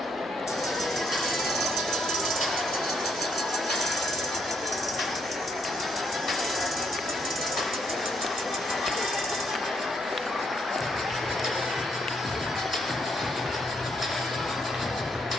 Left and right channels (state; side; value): noise; right; hum, 25 dB below the sound